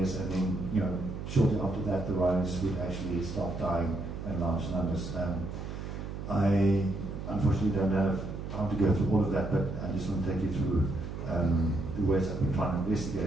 and then shortly after that the rhinos would actually start dying in large numbers. I unfortunately don't have time to go through all of that, but I just want to take you through the ways I've been trying to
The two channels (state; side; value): noise; right; hum, 7 dB below the sound